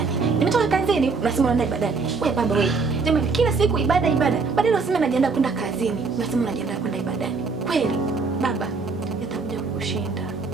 Nimetoka kazini unasema unaenda ibadani. Wewe baba wewe. Jamani kila siku ibada. Badala useme najiandaa kwenda kazini, unasema unajiandaa kwenda ibadani. Kweli baba, yatakuja kukushinda.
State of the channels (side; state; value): left; quieter; 4.5 dB